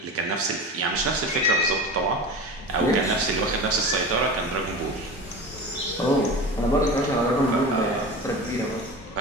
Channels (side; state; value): both; normal; correlation 0.31